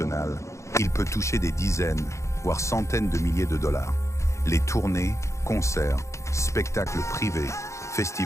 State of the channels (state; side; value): late; right; 0.14 ms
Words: il peut toucher des dizaines, voire centaines de milliers de dollars. Les tournées, concerts, spectacles privés,